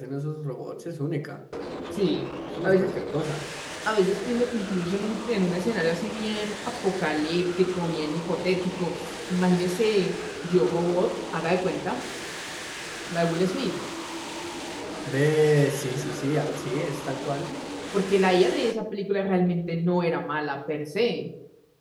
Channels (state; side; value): identical; both; correlation 1.00